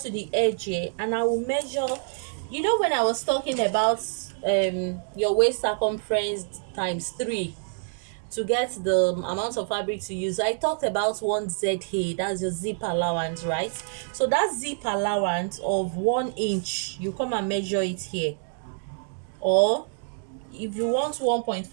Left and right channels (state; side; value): silent; left; digital silence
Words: to the edge here and I will measure. You know, when I was talking about your waist circumference times 3 to get the amount of fabric to use, I talked about 1 ZA, that's your zip allowance, right? So that zip allowance of 1 inch, you come and measure it here, or if you want